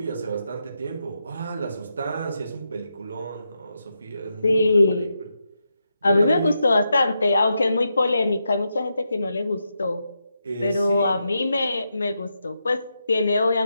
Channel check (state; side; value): inverted; both; correlation -0.85